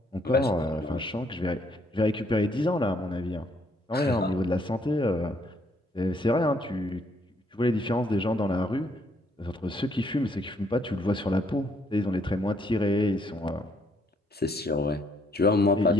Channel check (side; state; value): both; normal; correlation 0.69